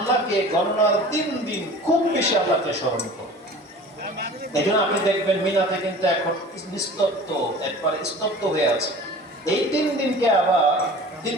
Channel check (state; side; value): normal; both; correlation 0.41